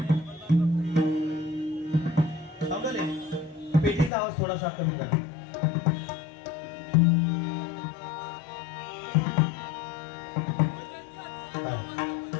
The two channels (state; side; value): drops out; right; at 4.1 s